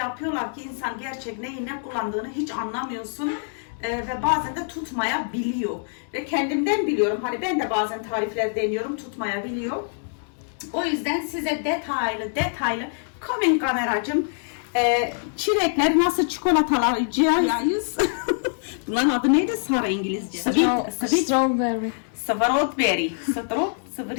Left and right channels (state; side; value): silent; right; digital silence